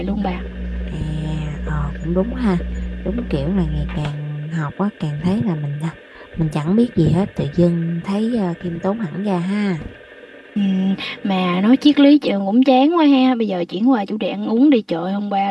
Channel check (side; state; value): both; identical; correlation 1.00